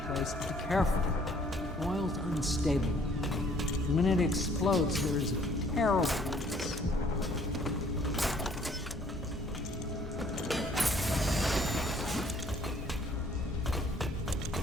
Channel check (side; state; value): both; normal; correlation 0.60